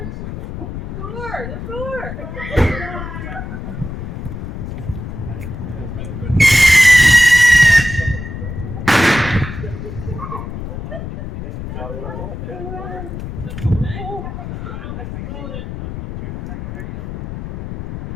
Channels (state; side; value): noise; left; rumble, 8 dB below the sound